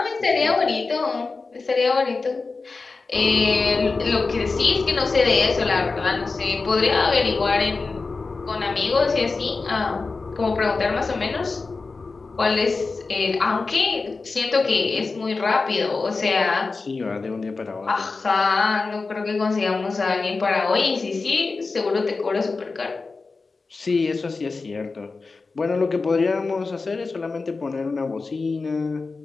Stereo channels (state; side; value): quieter; right; 4.1 dB